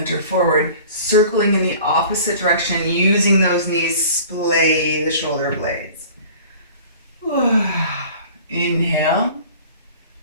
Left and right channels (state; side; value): inverted; both; correlation -0.45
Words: forward, circling in the opposite direction, using those knees, splay the shoulder blades. Inhale